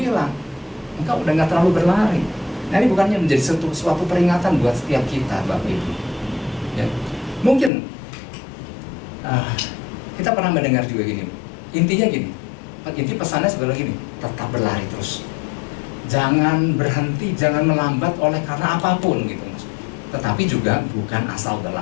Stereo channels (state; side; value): drops out; right; at 7.7 s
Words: engkau udah gak terlalu berlari. Nah ini bukannya menjadi suatu peringatan buat setiap kita, Bapak Ibu ya. Mungkin kita pernah mendengar juga gini, intinya gini, inti pesannya sebenarnya gini, tetap berlari terus, jangan berhenti, jangan melambat oleh karena apapun gitu, tetapi juga bukan asal